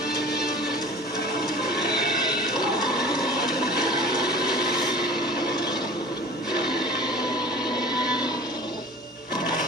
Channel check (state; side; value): normal; both; correlation 0.42